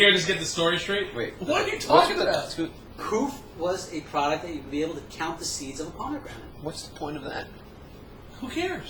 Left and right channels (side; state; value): both; identical; correlation 1.00